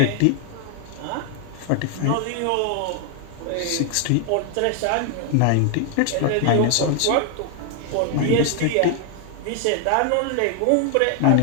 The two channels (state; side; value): different; both; correlation 0.00